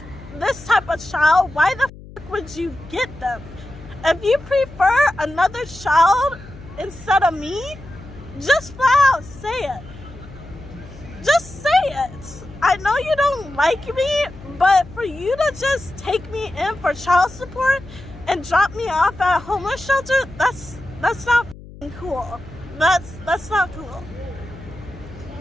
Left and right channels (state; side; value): noise; left; hum, 17 dB below the sound